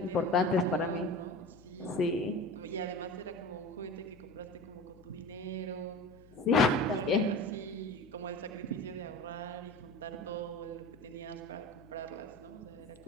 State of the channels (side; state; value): left; noise; hum, 23 dB below the sound